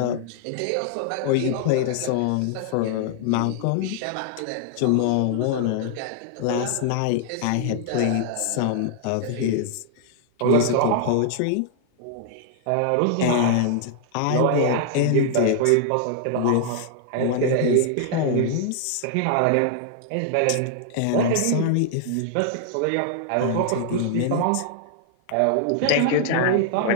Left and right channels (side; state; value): both; different; correlation -0.01